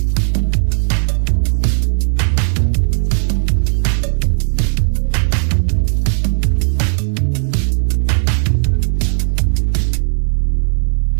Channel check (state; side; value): silent; left; digital silence